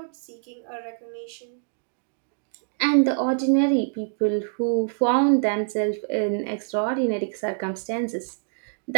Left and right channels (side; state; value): left; silent; digital silence